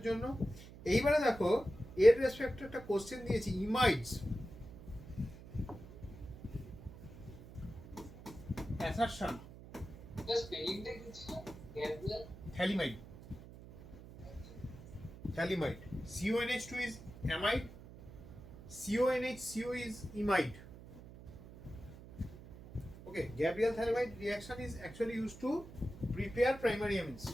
জন্য। এইবারে দেখো এর রেসপেক্টে একটা কোশ্চেন দিয়েছি, ইমাইডস অ্যাসারশন Just spelling টা কি ছিল? Gabriel? thalamide. Thalamide. CONH2 is amide. CONH2 is imide. Okay, Gabriel thalamide reaction is actually used to prepare primary amines.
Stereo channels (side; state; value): right; noise; hum, 16 dB below the sound